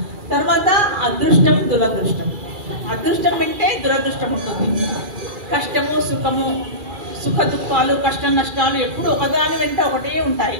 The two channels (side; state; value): left; late; 2.3 ms